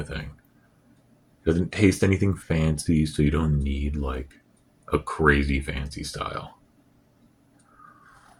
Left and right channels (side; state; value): both; identical; correlation 1.00